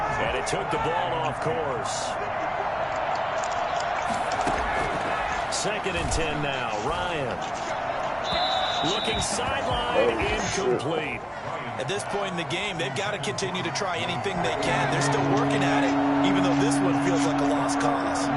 and it took the ball off course. 2nd and 10 now. Ryan looking sideline, incomplete. At this point in the game, they've got to continue to try anything they can. They're still working at it, even though this one feels like a lost cause.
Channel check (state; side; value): identical; both; correlation 1.00